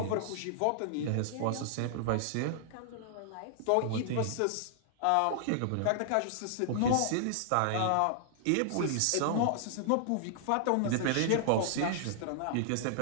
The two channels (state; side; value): different; both; correlation -0.01